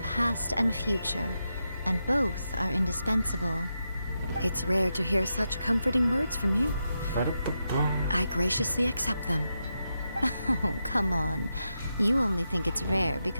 past and future, and both are indispensable. It's rare to hear such comforting words from you. Ba-da-ba-ba. I graciously accept them. Oh, come on. You only think it's rare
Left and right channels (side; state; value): both; inverted; correlation -0.86